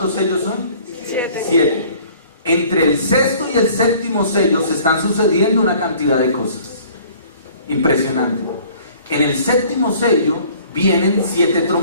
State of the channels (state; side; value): inverted; both; correlation -0.53